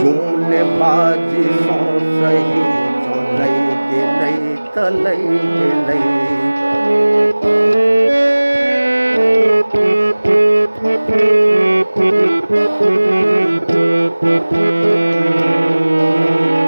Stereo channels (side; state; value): both; inverted; correlation -1.00